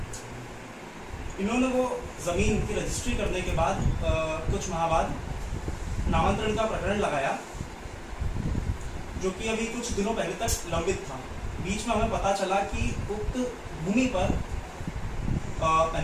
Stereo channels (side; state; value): both; identical; correlation 1.00